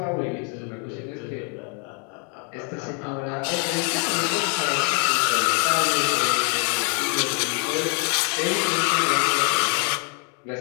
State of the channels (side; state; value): right; quieter; 36.9 dB